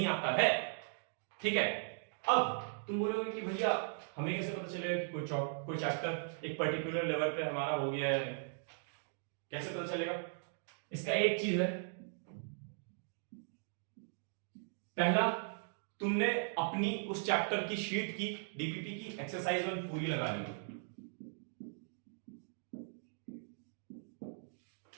आता है, ठीक है। अब तुम बोलोगे कि भैया हमें कैसे पता चलेगा कि कोई चैप्टर एक पर्टिकुलर लेवल पे हमारा हो गया है, कैसे पता चलेगा? इसका एक चीज है, पहला तुमने अपनी उस चैप्टर की शीट की डीपीपी की एक्सरसाइज 1 पूरी लगा ली।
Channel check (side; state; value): left; silent; digital silence